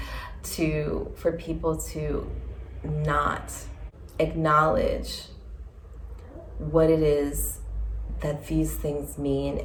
for people to not acknowledge what it is that these things mean,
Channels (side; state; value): both; identical; correlation 1.00